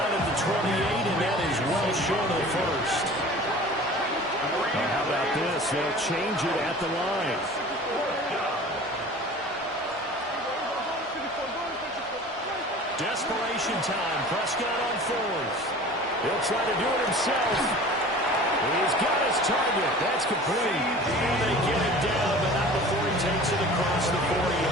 at the 28, and that is well short of the 1st. Now how about this? They'll change it at the line. Desperation time. Prescott on 4th. He'll try to do it himself. He's got his target. That's complete. And they get it down, but not before he takes it across the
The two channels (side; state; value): both; normal; correlation 0.42